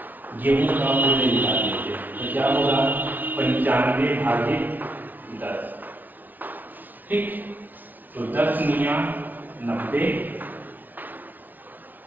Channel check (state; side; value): late; left; 0.083 ms